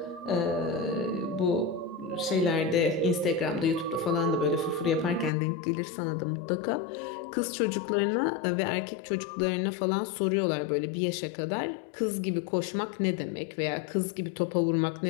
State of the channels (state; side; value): drops out; right; at 5.3 s